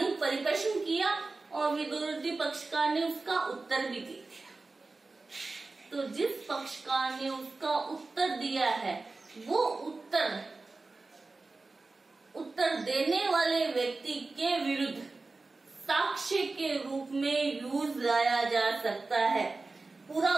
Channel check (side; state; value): left; quieter; 3.6 dB